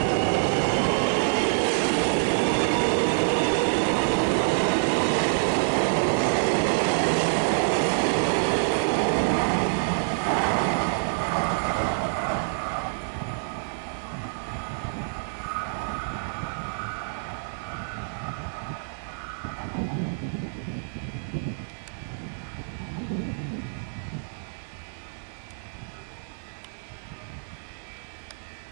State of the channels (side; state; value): left; silent; 60 dB below the other